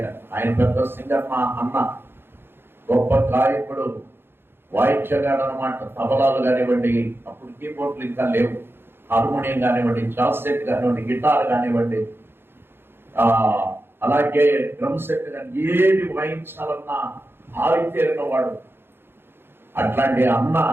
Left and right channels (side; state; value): left; late; 0.11 ms